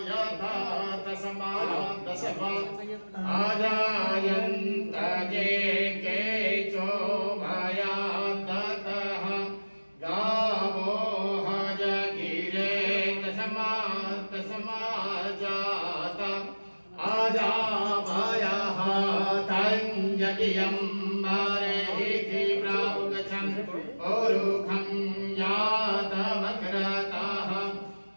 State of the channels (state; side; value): inverted; both; correlation -1.00